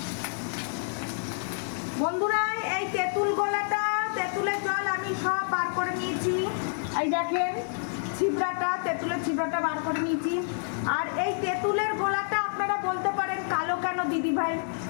বন্ধুরা, এই তেঁতুল গোলাটা, তেঁতুলের জল আমি সব বার করে নিয়েছি। এই দেখেন ছিবড়াটা, তেঁতুলের ছিবড়াটা বার করে নিয়েছি। আর এই তেঁতুলের গোলাটা আপনারা বলতে পারেন কালো কেন দিদি ভাই?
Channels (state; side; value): silent; right; digital silence